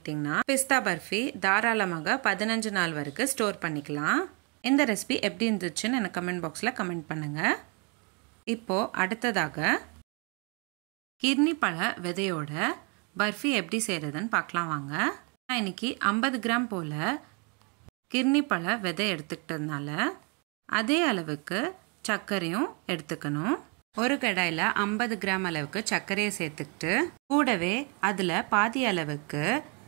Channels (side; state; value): left; quieter; 33.7 dB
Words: பிஸ்தா பர்ஃபி தாராளமாக 15 நாள் வரைக்கும் ஸ்டோர் பண்ணிக்கலாம். இந்த ரெசிபி எப்படி இருந்துச்சுன்னு எனக்கு கமெண்ட் பாக்ஸில் கமெண்ட் பண்ணுங்கள். இப்போது அடுத்ததாக கிர்னி பழ விதையோட பர்ஃபி எப்படி செய்கிறதுன்னு பார்க்கலாம் வாங்க. நான் இன்றைக்கி 50 கிராம் போல் கிர்னி பழ விதை எடுத்துக்கிட்டதுனால அதே அளவுக்கு சர்க்கரையும் எடுத்துக்கணும். ஒரு கடாயில் 50 கிராம் அளவுக்கு சர்க்கரையை சேர்த்துக்கிட்டு கூடவே அதில் பாதி அளவுக்கு